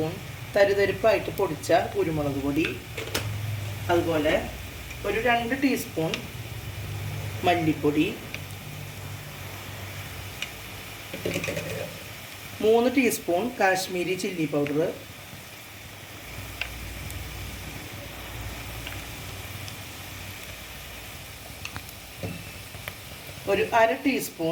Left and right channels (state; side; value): identical; both; correlation 1.00